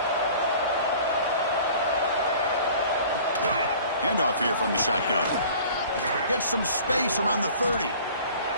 Handoff here from the shotgun. Gets some space around the 30.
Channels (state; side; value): inverted; both; correlation -0.47